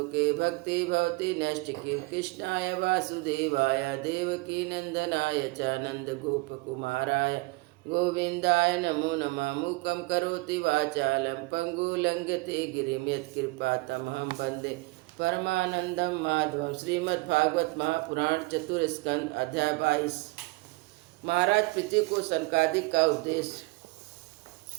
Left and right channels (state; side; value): quieter; left; 23.9 dB